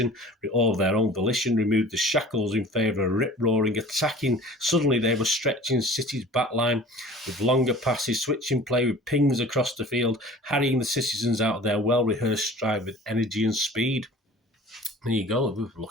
removed the shackles in favour of rip-roaring attacking. Suddenly they were stretching City's backline with longer passes, switching play with pings across the field, harrying the citizens out of their well-rehearsed stride with energy and speed. There you go. We were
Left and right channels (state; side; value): normal; both; correlation 0.44